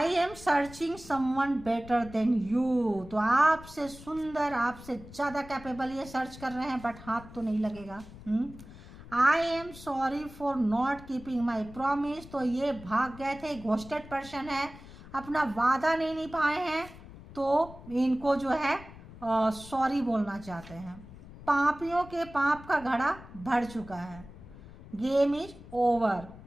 am searching someone better than you, तो आपसे सुंदर, आपसे ज़्यादा कैपेबल ये सर्च कर रहे हैं, बट हाथ तो नहीं लगेगा। I am sorry for not keeping my promise, तो ये भाग गए थे, घोस्टेड पर्सन है, अपना वादा नहीं निभाए हैं, तो इनको जो है सॉरी बोलना चाहते हैं। पापियों के पाप का घड़ा भर चुका है, गेम इज ओवर,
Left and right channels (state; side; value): noise; left; rumble, 17 dB below the sound